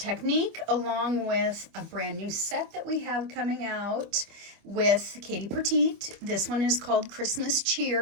along with a brand new set that we have coming out with Katie Petiet. This one is called Christmas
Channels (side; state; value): left; late; 25 ms